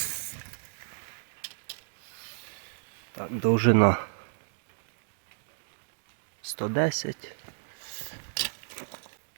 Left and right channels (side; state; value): left; silent; digital silence